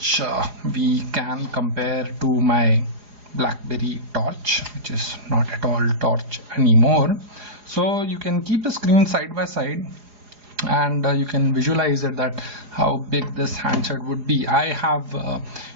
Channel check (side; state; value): left; late; 4.8 ms